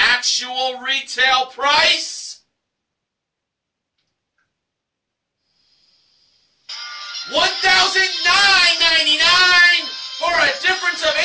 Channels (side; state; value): both; identical; correlation 1.00